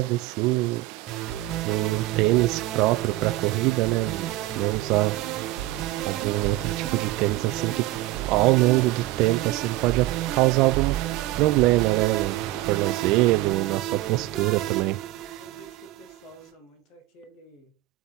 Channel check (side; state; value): left; quieter; 16.9 dB